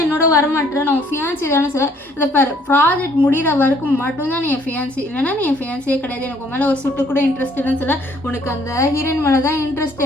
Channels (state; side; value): normal; both; correlation 0.62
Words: என்னோட வரமாட்டேற, நான் ஃபியான்சி தானே சொல்ல. இதை பாரு, ப்ராஜெக்ட் முடிகிற வரைக்கும் மட்டும்தான் நீ என் ஃபியான்சி, இல்லைன்னா நீ என் ஃபியான்சியே கிடையாது, எனக்கு உன் மேலே ஒரு சுட்டு கூட இன்ட்ரெஸ்ட் இல்லைன்னு சொல்ல. உனக்கு அந்த ஹீரோயின் மேலே தான் இன்ட்ரெஸ்ட்